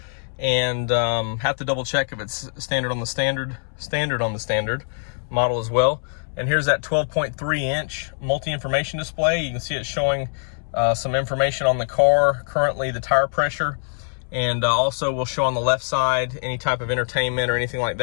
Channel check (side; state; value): right; silent; 62 dB below the other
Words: and have to double check if it's standard on the standard model as well. And here's that 12.3 inch multi-information display. You can see it showing some information on the car, currently the tire pressure, and also will show on the left side any type of entertainment or anything like